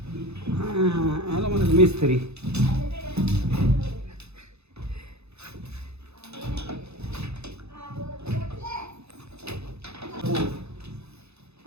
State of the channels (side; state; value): left; late; 0.80 ms